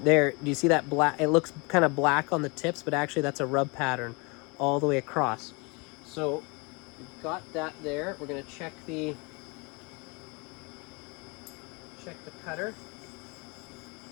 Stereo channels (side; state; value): right; quieter; 29.2 dB